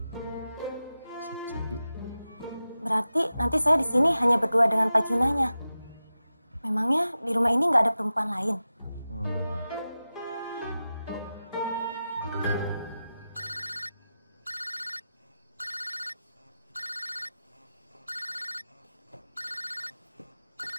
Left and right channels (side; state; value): both; inverted; correlation -0.93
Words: Sepi? Berarti nanti saya di sini hanya berdua dengan Pak Junanya. Memangnya di rumah ini nggak ada perempuan lain?